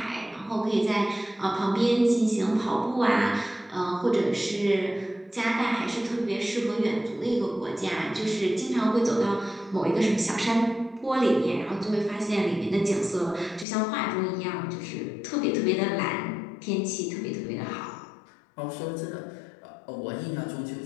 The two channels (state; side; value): drops out; right; at 13.7 s